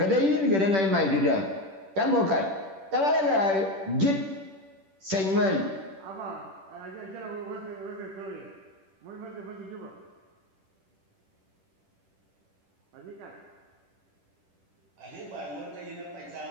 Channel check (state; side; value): late; left; 10 ms